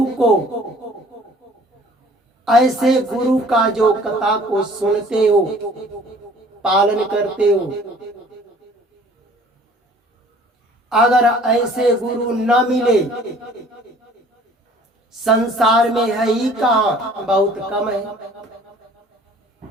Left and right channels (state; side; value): normal; both; correlation 0.52